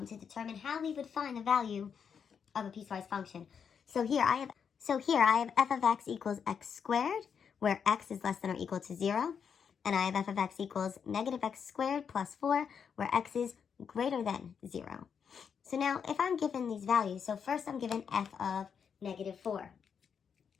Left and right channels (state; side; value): quieter; right; 7.0 dB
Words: determine how we would find the value of a piecewise function. So here I have f of x equals x squared, where x is less than or equal to 0. And I have f of x equals negative x squared plus 4, where x is greater than 0. So now if I'm given these values, so first I'm given f of negative 4.